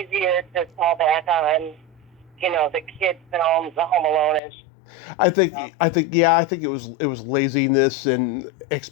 to fall back on, the kids' films, the Home Alone-ish? I think it was laziness and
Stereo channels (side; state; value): right; drops out; at 4.4 s